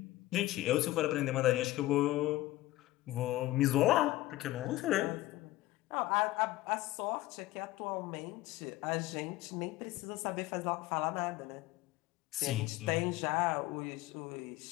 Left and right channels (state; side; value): quieter; right; 17.1 dB